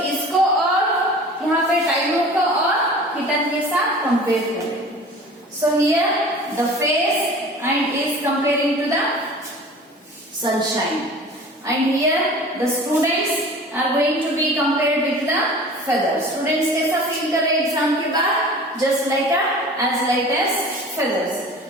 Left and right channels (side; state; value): both; normal; correlation 0.41